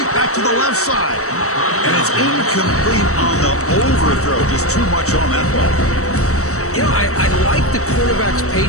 back to the left side. And it's incomplete on the overthrow. Just too much on that ball. You know, I like the quarterback's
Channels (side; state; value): right; late; 0.65 ms